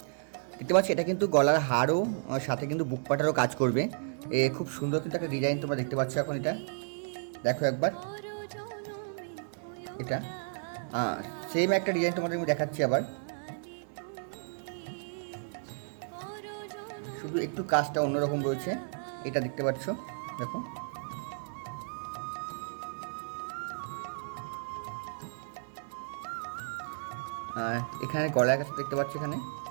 দেখতে পাচ্ছ এটা কিন্তু গলার হারও সাথে কিন্তু বুক পাটারও কাজ করবে। খুব সুন্দর কিন্তু একটা ডিজাইন তোমরা দেখতে পাচ্ছ। এখন এটা দেখো একবার, এটা সেম একটা ডিজাইন তোমাদের আমি দেখাচ্ছি আবার। শুধু একটু কাজটা অন্যরকম রয়েছে, এটা দেখতে পাচ্ছ। দেখো এখানে গলার কাছে দেখতে পাচ্ছ, এখানে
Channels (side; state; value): left; silent; digital silence